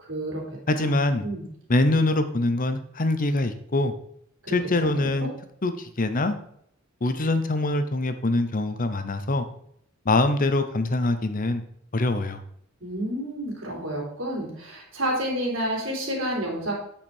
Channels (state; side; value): normal; both; correlation 0.52